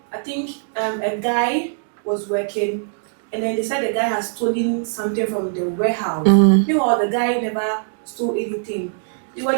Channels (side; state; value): left; silent; digital silence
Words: I think a guy was working, and then they said the guy has stolen something from the warehouse. Meanwhile, the guy never stole anything. They were